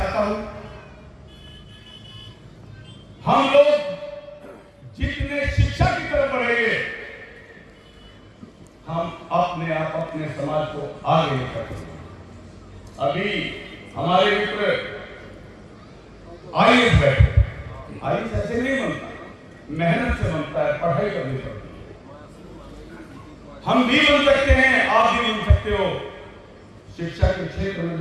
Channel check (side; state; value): both; identical; correlation 1.00